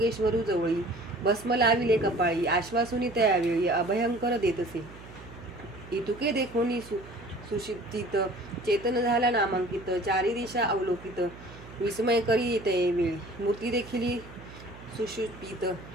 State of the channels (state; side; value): noise; right; hum, 17 dB below the sound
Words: जवळी भस्म लाविले कपाळी आश्वासुनी त्यावेळी अभयंकर देतसे इतुके देखोनी सुषिप्तित चेतन झाला नामांकित चारी दिशा अवलोकित विस्मय करी येते वेळी मूर्ती देखील सुषुप्तित